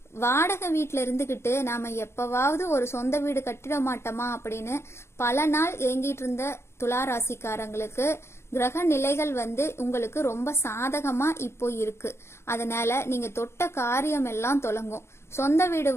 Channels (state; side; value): late; right; 0.13 ms